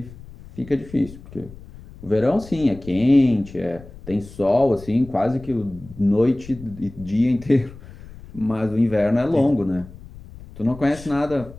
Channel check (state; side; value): noise; left; rumble, 18 dB below the sound